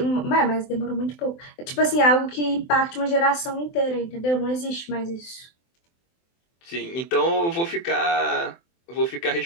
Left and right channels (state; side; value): late; right; 23 ms